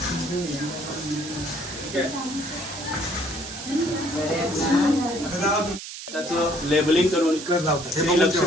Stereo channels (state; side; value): noise; right; hiss, 10 dB below the sound